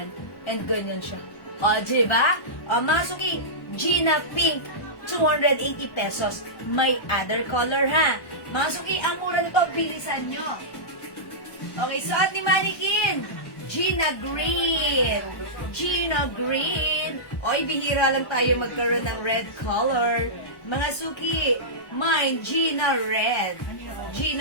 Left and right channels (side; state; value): right; late; 1.1 ms